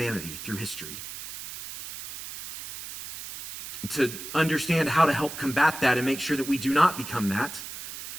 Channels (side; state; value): right; noise; hiss, 10 dB below the sound